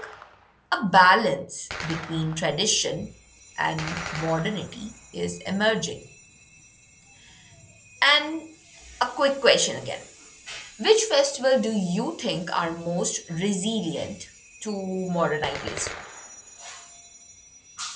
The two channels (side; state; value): both; identical; correlation 1.00